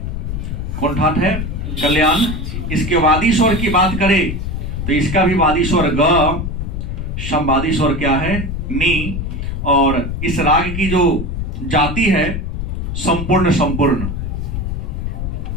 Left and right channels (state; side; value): noise; left; rumble, 4 dB below the sound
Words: कौन ठाट है? कल्याण। इसके वादी स्वर की बात करें तो इसका भी वादी स्वर ग, समवादी स्वर क्या है? नी। और इस राग की जो जाति है संपूर्ण संपूर्ण